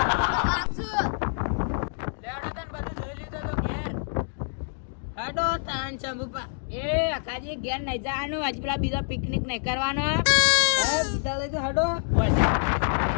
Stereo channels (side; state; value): right; silent; digital silence